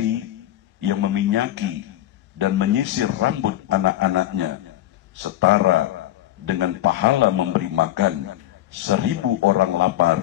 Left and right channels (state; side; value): quieter; right; 14.0 dB